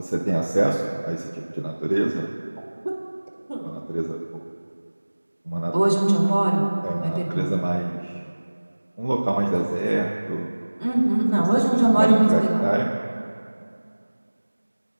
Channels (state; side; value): inverted; both; correlation -1.00